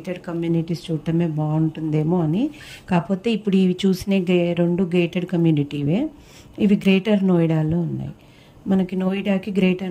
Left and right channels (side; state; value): both; identical; correlation 1.00